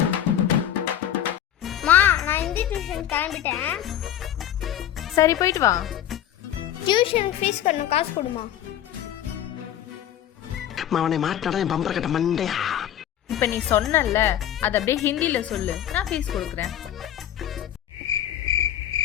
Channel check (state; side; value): quieter; right; 11.0 dB